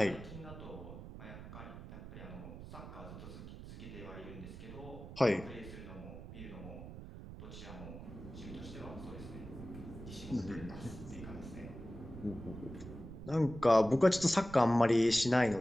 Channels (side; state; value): right; noise; rumble, 12 dB below the sound